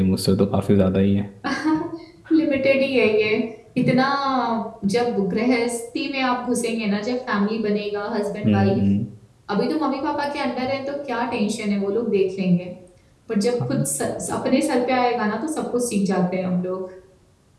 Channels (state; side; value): identical; both; correlation 1.00